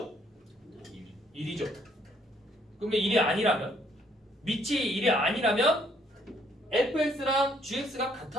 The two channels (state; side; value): normal; both; correlation 0.67